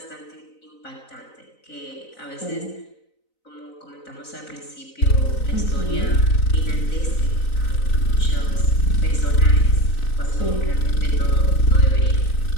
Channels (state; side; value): late; right; 4.0 ms